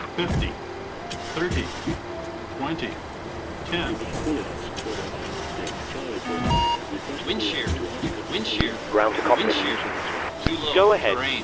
50. 30. 20. 10. Wind shear. Wind shear. Ground to copy. Wind shear. Too low. Go ahead. Terrain.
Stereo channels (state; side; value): identical; both; correlation 1.00